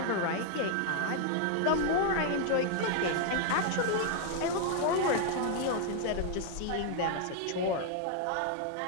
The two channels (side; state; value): both; different; correlation 0.00